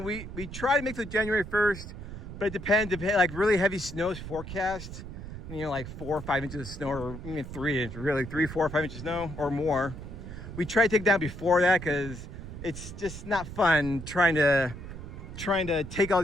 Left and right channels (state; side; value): noise; right; rumble, 10 dB below the sound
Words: We try to make it January 1st, but it depends. Like really heavy snow is forecast. Like 4 or 5 inches of snow, or even 3 inches, really 3, 4, or 5 inches of snow or more. We try to take it down before that because it's just not fun trying to take all